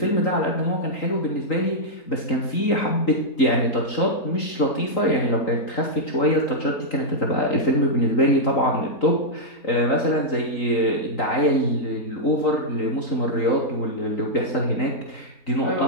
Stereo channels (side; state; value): right; late; 3.9 ms